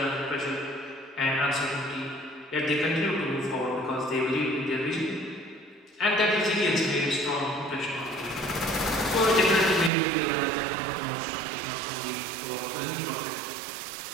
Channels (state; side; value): drops out; left; at 9.9 s